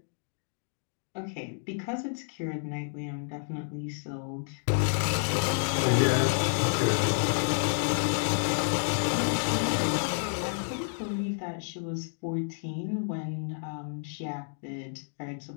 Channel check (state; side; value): silent; right; digital silence